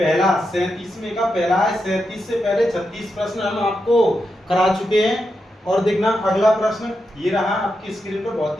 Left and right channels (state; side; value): normal; both; correlation 0.86